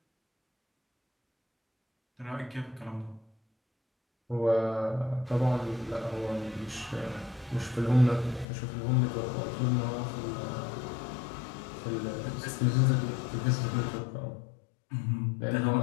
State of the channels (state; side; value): drops out; right; at 8.5 s